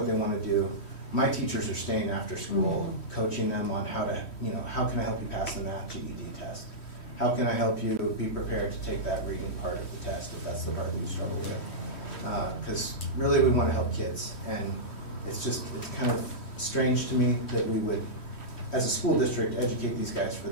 they want to do, my teachers are staying after school, coaching them on how to, how can I help you pass the math GED test? How can I help you be prepared to take that reading part of the test if that's the part that you struggle with? Because really we want to help kids, and it's kind of strange to me that we would, as a school district, educate these guys for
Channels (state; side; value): late; right; 3.1 ms